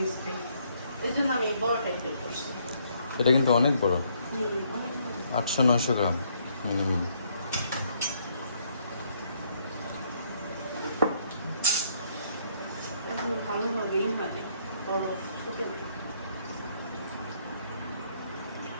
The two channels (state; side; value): inverted; both; correlation -0.69